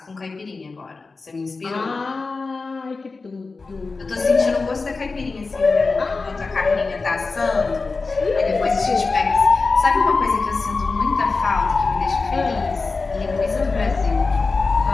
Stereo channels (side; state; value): right; quieter; 4.0 dB